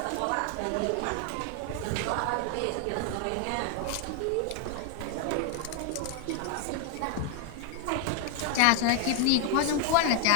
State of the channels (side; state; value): both; different; correlation 0.00